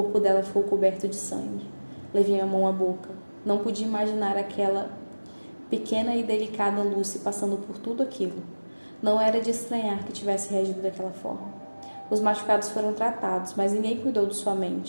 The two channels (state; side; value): inverted; both; correlation -1.00